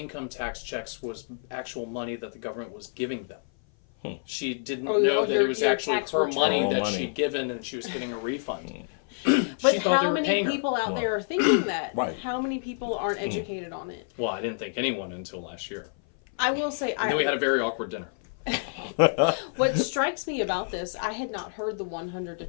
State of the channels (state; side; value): silent; right; 56 dB below the other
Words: tax checks was actual money that the government was giving them. She didn't know that it was actually her money that she'd given and she was getting a refund. But how many people out there are thinking that? Right. How many people aren't educated on it? Well, I didn't think anyone until last year. I will say... And then we had a very awkward dinner. What strikes me about this, I had not heard the $100 to